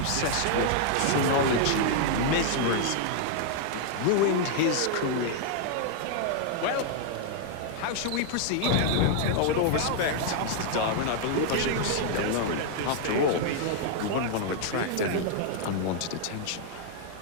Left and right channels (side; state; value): both; different; correlation 0.00